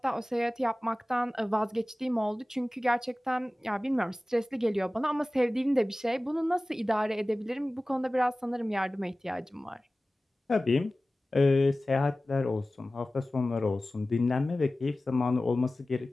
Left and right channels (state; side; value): normal; both; correlation 0.97